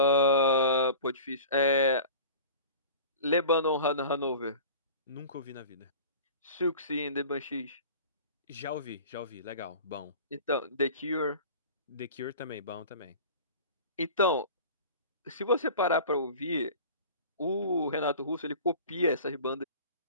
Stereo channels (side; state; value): both; inverted; correlation -0.39